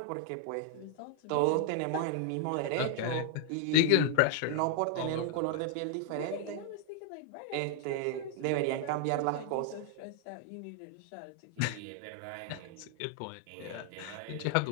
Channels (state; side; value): different; both; correlation 0.00